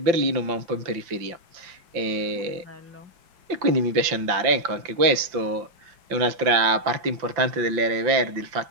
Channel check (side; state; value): left; late; 5.8 ms